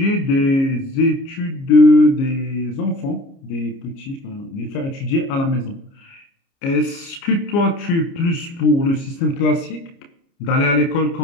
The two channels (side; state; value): right; late; 29 ms